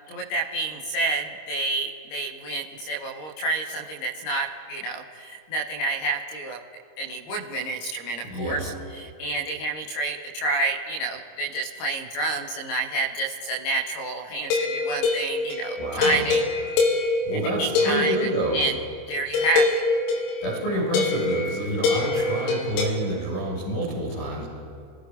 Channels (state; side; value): late; right; 26 ms